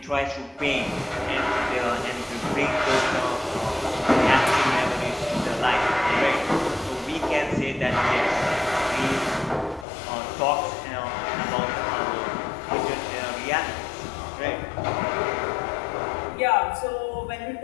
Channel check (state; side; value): drops out; right; at 9.9 s